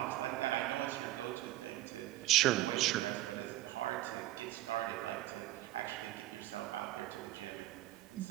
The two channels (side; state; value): left; quieter; 15.3 dB